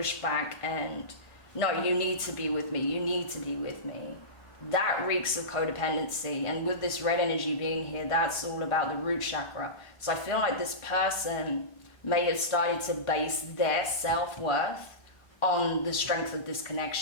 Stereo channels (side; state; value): right; late; 1.4 ms